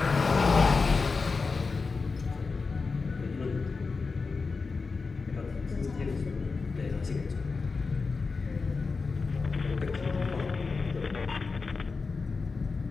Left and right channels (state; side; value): quieter; right; 4.4 dB